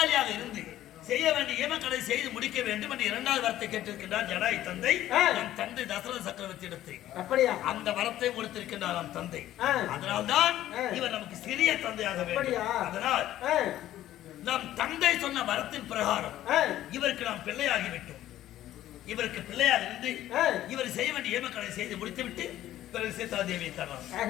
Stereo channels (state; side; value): quieter; right; 13.4 dB